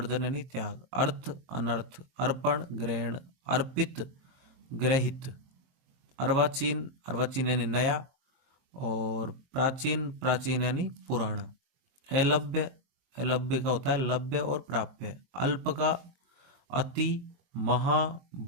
यानी त्याग। अर्थ, अनर्थ, अर्पण, ग्रहण, अर्पित, ग्रहित। अर्वाचीन, अर्वाचीन यानी नया, और प्राचीन, प्राचीन यानी पुराना। अलभ्य, अलभ्य का होता है लभ्य और प्राप्य। अल्प का अति, महा,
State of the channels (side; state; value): left; late; 22 ms